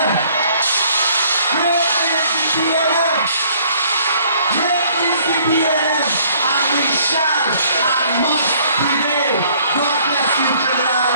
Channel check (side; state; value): both; inverted; correlation -0.60